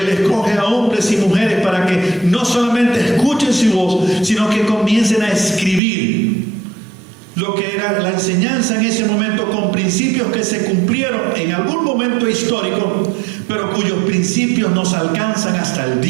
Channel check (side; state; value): left; drops out; at 5.8 s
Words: escoge a hombres y mujeres para que no solamente escuchen su voz, sino que comiencen a escribir lo que era la enseñanza en ese momento, con principios que se cumplieron en algún momento histórico, pero cuyos principios nos alcanzan hasta el